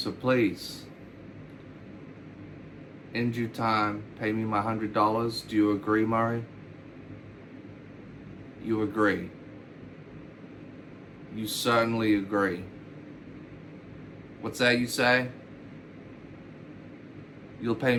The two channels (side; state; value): both; identical; correlation 1.00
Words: please, in due time, pay me my $100. Do you agree, Murray? You agree. You certainly agree. What's that you say? You'll pay